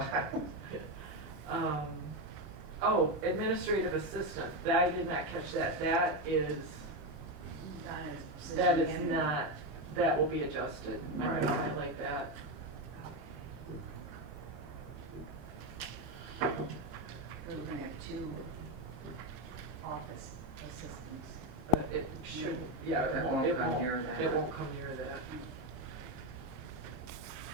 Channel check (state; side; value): late; left; 2.4 ms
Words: file. Oh, administrative assistant, I did not catch that. That is not, that will be adjusted. I'm gonna highlight that. We're gonna have 2 office assistants. It shouldn't, yeah, It won't come near that. It won't come near that.